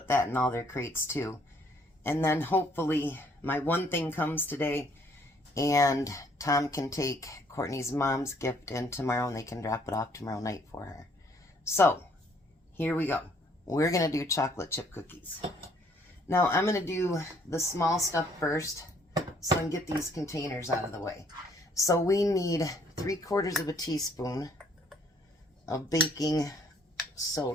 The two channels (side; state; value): both; normal; correlation 0.63